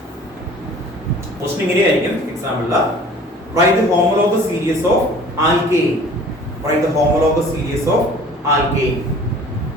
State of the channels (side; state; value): both; normal; correlation 0.48